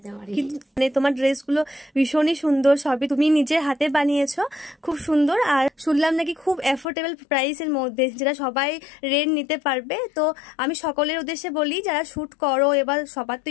পারি। কিন্তু মানে তোমার ড্রেসগুলো ভীষণই সুন্দর, সবই তুমি নিজের হাতে বানিয়েছো, খুব সুন্দর। আর শুনলাম নাকি খুব অ্যাফোর্ডেবল প্রাইসের মধ্যে, যেটা সবাই রেন্ট নিতে পারবে। তো আমি সকলের উদ্দেশ্যে বলি, যারা শ্যুট করো, এবার সবার তো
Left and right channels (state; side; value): drops out; right; at 6.9 s